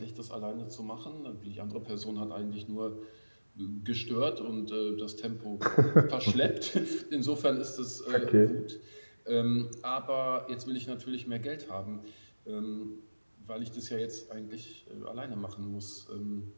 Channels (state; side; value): inverted; both; correlation -1.00